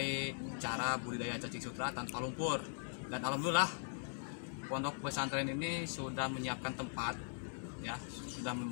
cara budidaya cacing sutra tanpa lumpur. Dan alhamdulillah pondok pesantren ini sudah menyiapkan tempat ya,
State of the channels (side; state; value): right; silent; digital silence